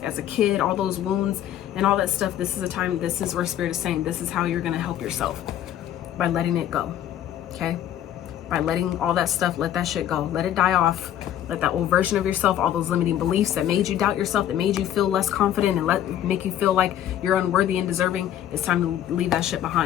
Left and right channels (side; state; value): right; quieter; 11.2 dB